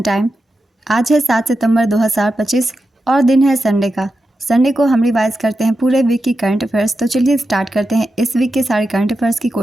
time. आज है 7 सितंबर 2025 और दिन है संडे का। संडे को हम रिवाइज करते हैं पूरे वीक की करंट अफेयर्स। तो चलिए स्टार्ट करते हैं इस वीक के सारे करंट अफेयर्स की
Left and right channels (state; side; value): normal; both; correlation 0.90